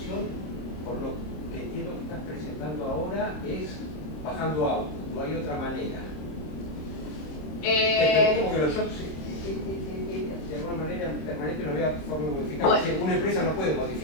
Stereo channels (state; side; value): late; right; 26 ms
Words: por lo que entiendo que estás presentando ahora, es bajando output, no hay otra manera. Como que los shocks de alguna manera permanente no había forma de modificar. Bueno. Una empresa no puede